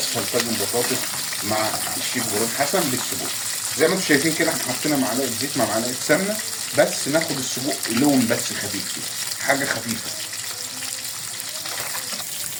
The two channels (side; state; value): both; identical; correlation 1.00